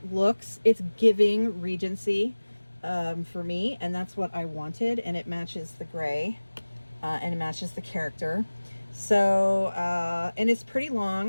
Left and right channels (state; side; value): inverted; both; correlation -1.00